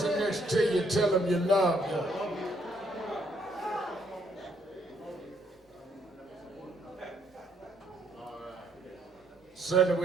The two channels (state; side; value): normal; both; correlation 0.70